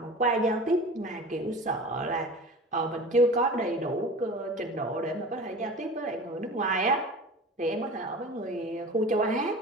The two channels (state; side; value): normal; both; correlation 0.37